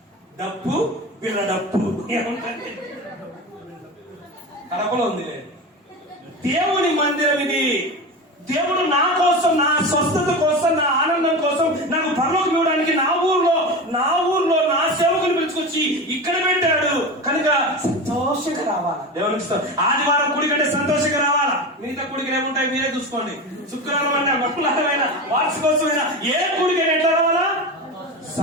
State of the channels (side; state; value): both; normal; correlation 0.25